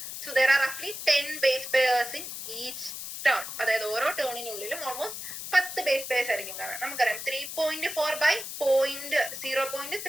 സോ ദർ ആർ റഫ്ലി 10 base pairs in each turn. അതായത് ഓരോ ടേണിനുള്ളിലും ഓൾമോസ്റ്റ് 10 ബേസ് പെയർസ് ആയിരിക്കും കാണുക. നമുക്കറിയാം 3.4 by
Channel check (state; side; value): noise; left; hiss, 8 dB below the sound